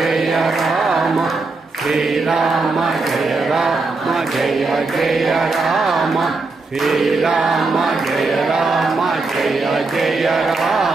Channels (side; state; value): left; quieter; 3.7 dB